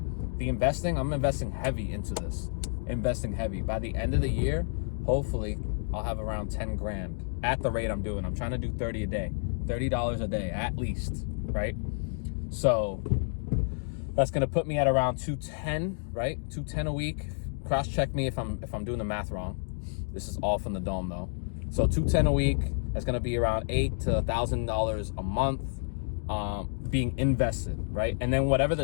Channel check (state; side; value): silent; right; digital silence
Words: The investing, I'm investing heavy into this. Investing heavy. By the end of the year, hopefully I'll have around 10 grand at the rate I'm doing. I'm trying to do 30 a day, $30 a day at least, right? So that's going to put me at around 210, right? 210 a week. Cross check me if I'm doing the math wrong. This is all from the dome though. So 210 a week, that's going to be around $8,000 to $1,000 a month being invested, right? And then whatever